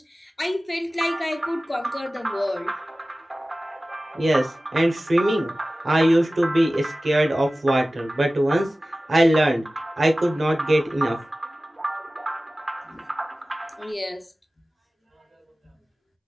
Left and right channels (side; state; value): both; normal; correlation 0.97